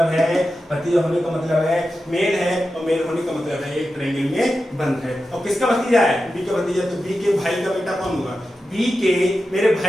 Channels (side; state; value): both; normal; correlation 0.91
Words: है, भतीजा होने का मतलब है मेल है और मेल होने का मतलब है एक ट्रायंगल में बंद है। और किसका भतीजा है? बी का भतीजा। तो बी के भाई का बेटा कौन होगा? बी के मेरे